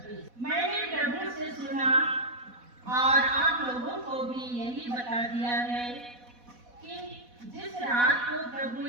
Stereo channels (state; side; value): late; left; 4.1 ms